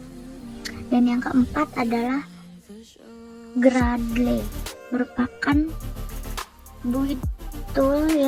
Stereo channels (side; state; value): both; identical; correlation 1.00